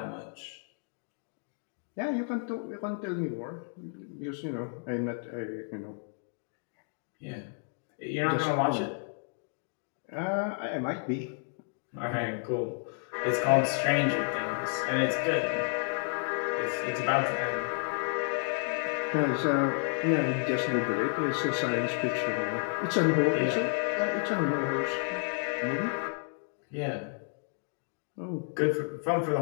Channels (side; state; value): right; silent; 57 dB below the other